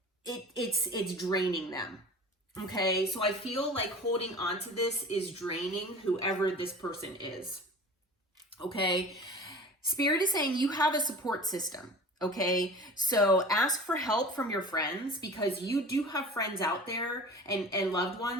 it's draining them. Okay, so I feel like holding on to this is draining whoever this person is. Okay, Spirit is saying you have a support system. Okay, so ask for help from your friends, because you do have friends out there and loved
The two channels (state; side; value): normal; both; correlation 0.39